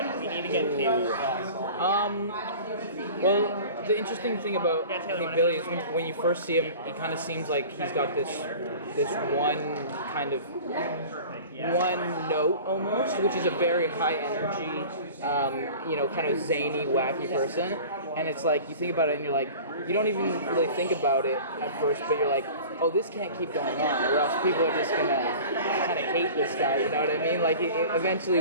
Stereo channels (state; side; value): inverted; both; correlation -0.40